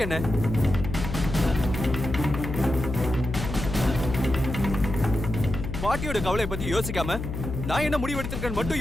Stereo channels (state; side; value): noise; left; hum, 6 dB below the sound